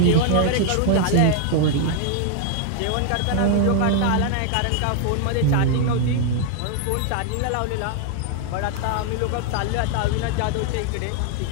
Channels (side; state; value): both; different; correlation 0.00